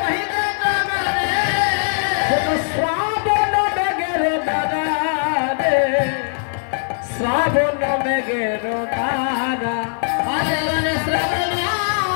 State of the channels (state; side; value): silent; right; 55 dB below the other